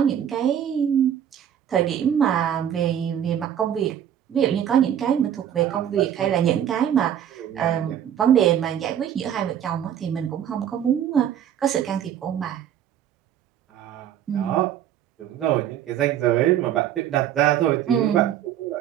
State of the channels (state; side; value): quieter; left; 9.9 dB